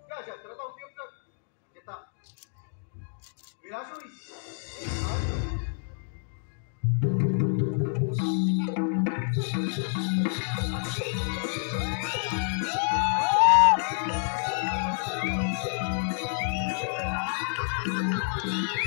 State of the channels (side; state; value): right; silent; digital silence